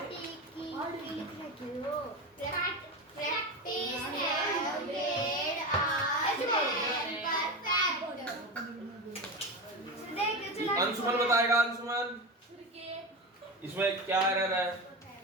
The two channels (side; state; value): both; normal; correlation 0.22